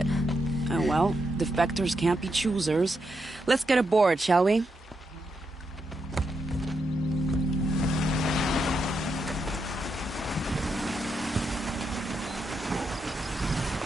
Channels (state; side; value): normal; both; correlation 0.82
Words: Oh well, defectors can't be choosers. Let's get aboard, shall we?